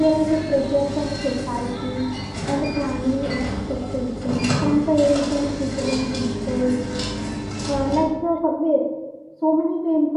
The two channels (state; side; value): identical; both; correlation 1.00